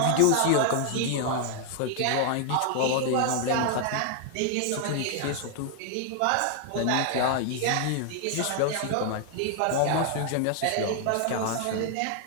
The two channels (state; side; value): different; both; correlation 0.00